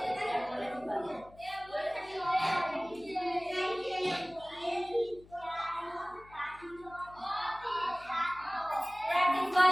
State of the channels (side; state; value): left; noise; hum, 23 dB below the sound